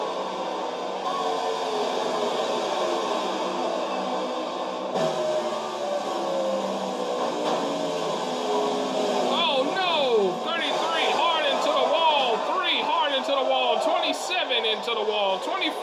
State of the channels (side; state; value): both; identical; correlation 1.00